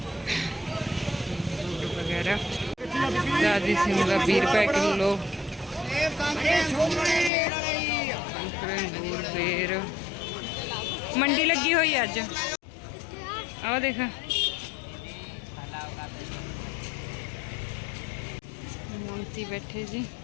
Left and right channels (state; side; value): drops out; right; at 7.3 s